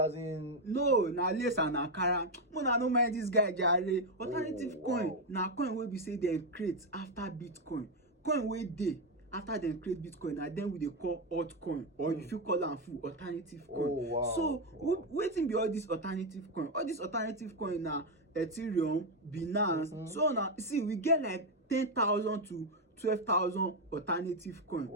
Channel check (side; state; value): both; normal; correlation 0.05